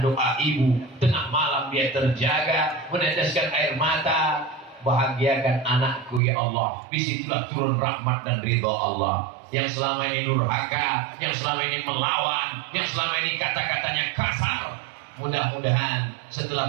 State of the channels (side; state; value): left; drops out; at 6.2 s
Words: doa ibu. Tengah malam dia terjaga, meneteskan air mata. Bahagiakan anakku ya Allah. Disitulah turun rahmat dan ridha Allah. Yang selama ini durhaka, yang selama ini melawan, yang selama ini kata-katanya kasar, mudah-mudahan